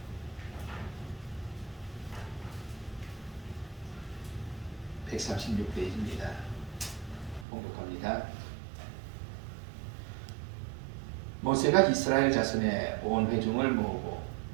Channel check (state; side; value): drops out; left; at 7.5 s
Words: (136페이지입니다) 봉독합니다. 모세가 이스라엘 자손의 온 회중을 모으고